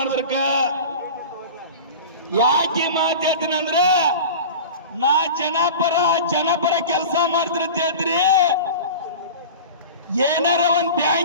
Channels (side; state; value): both; inverted; correlation -0.34